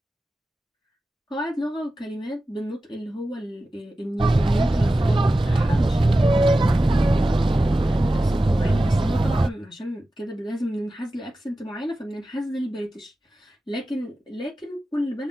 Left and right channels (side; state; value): both; normal; correlation 0.94